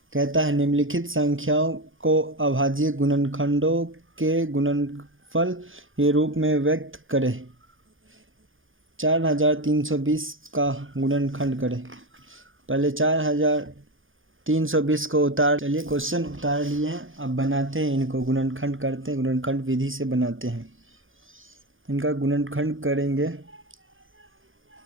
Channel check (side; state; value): left; late; 0.58 ms